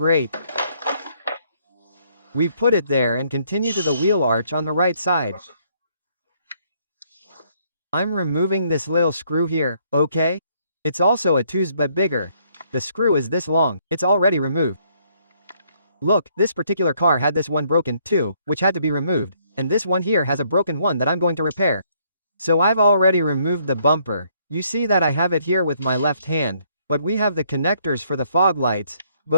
We put it there and continue to the wheel arch on the right side. I'm removing this little screw here, okay? It's also a 2's but bigger. The screw is this long, it's already removed. Look, this particular car had this one broken, too, which had to be removed, and this one here has a broken one that I'm going to repair. So I've already removed the bumper. You see that I have it here with my left hand, but we have the connectors for the fog lights,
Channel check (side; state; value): both; inverted; correlation -0.68